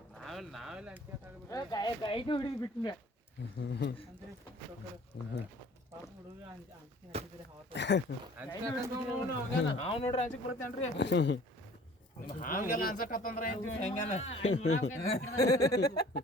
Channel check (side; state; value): both; normal; correlation 0.51